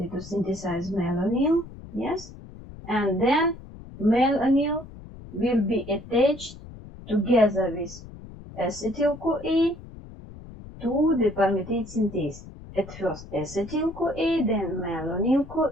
to synthesize malonyl, yes, and then malonyl will be attached together with acetyl-CoA to the palmitate synthase. At first acetyl-CoA, then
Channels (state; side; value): noise; left; rumble, 16 dB below the sound